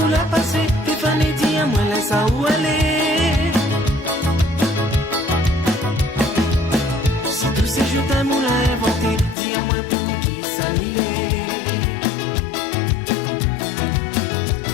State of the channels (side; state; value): right; drops out; at 9.3 s